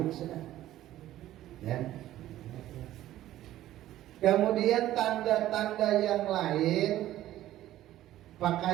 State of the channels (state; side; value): quieter; left; 13.9 dB